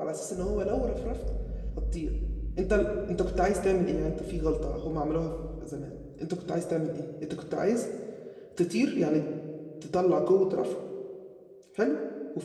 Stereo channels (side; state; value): both; identical; correlation 1.00